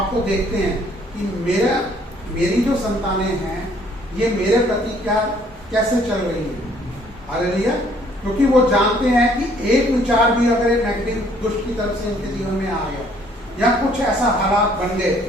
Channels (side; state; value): both; normal; correlation 0.62